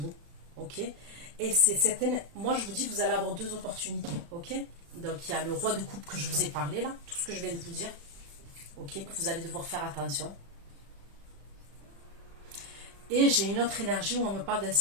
ok. Et c'est cette énergie, moi je vous dis, vous allez avoir deux opportunités, ok. Donc il y a le roi de coupe que je vous ai parlé là, tout ce que je viens de vous dire, ok, vous allez devoir faire attention. Et j'ai une autre énergie où on me parle d'un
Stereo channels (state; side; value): late; left; 35 ms